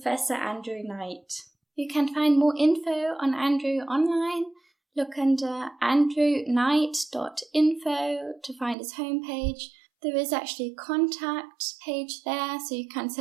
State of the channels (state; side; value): drops out; left; at 8.8 s